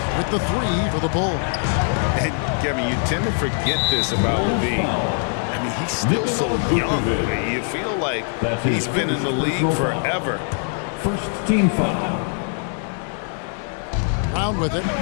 with the three for the Bulls. And Kevin, you tend to forget this about Levine. I mean, he's still so young. You feel like he's been in the league forever. First team foul. Brown with it,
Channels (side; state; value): right; silent; 56 dB below the other